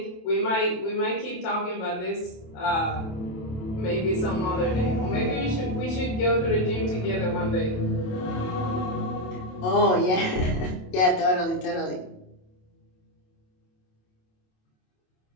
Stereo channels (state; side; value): late; right; 27 ms